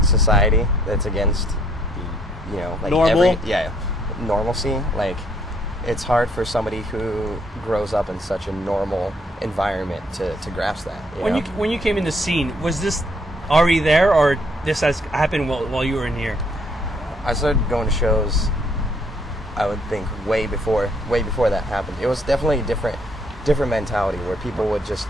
society. That's against, you know, like Normal? normalcy. Like, it's hard for somebody who grows up in such a normal environment to grasp that. When you came in the scene, was this already there, or this has happened while you were in here? I started going to shows, I would think, way before that happened. It was definitely a different mentality, where people would just,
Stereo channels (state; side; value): normal; both; correlation 0.68